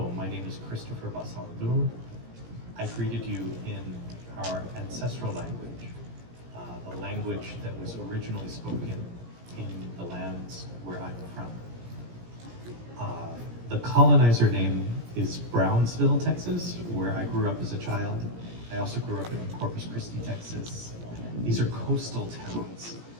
my name is Christopher Basaldu. I greeted you in our ancestral language, the language that was originally spoken in the lands where I'm from. The colonizer name is Brunsbüttel, Texas, where I grew up as a child. I also grew up in Corpus Christi, Texas. These are coastal towns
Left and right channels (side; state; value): left; late; 17 ms